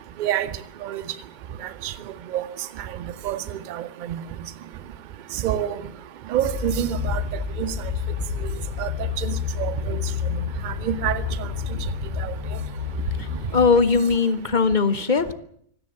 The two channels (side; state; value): left; late; 2.2 ms